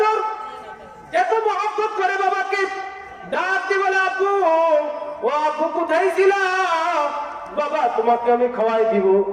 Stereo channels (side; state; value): both; identical; correlation 1.00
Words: এত মহব্বত করে বাবাকে ডাক দিয়ে বলে, আব্বু ও আব্বু কোথায় ছিল, বাবা তোমাকে আমি খাওয়াই দিব,